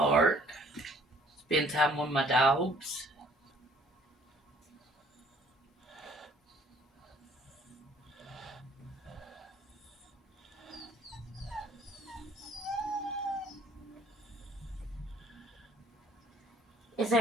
Spend time with my dogs. Is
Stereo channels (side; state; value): both; normal; correlation 0.59